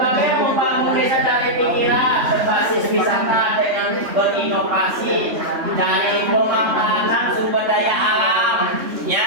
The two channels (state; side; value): late; left; 3.4 ms